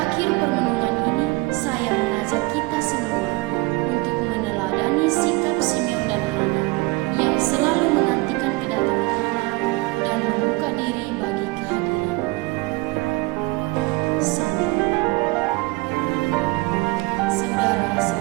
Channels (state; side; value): quieter; left; 23.9 dB